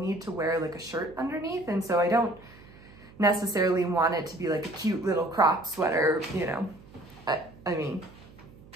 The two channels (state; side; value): noise; right; hum, 22 dB below the sound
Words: to wear like a shirt underneath. And so I don't necessarily want it to be like a cute little crop sweater, you know. I mean,